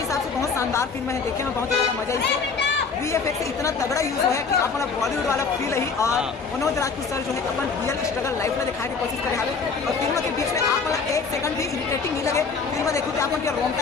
हिसाब से बहुत शानदार फिल्म है, देखने में बहुत ज़्यादा मजा इसे। VFX इतना तगड़ा यूज हुआ है कि आप बॉलीवुड वाला फील ही, और मनोज राजपूत सर जो है अपन रियल स्ट्रगल लाइफ में दिखाने की कोशिश करे हाले। और फिल्म के बीच में आप एक सेकंड भी इरिटेटिंग नहीं लगे। फिल्म देखो तो आप उनके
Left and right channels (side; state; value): right; quieter; 5.1 dB